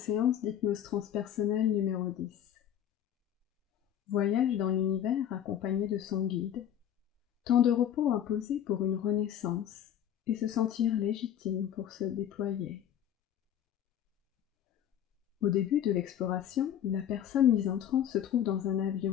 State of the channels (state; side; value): quieter; right; 10.1 dB